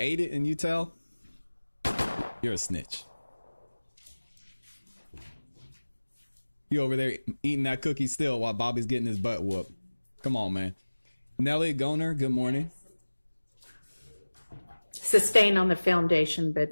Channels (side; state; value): both; inverted; correlation -1.00